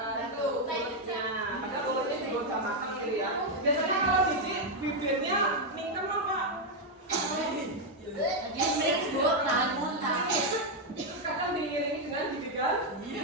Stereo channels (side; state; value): both; normal; correlation 0.02